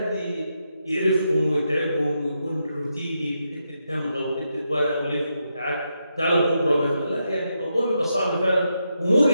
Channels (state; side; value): inverted; both; correlation -0.83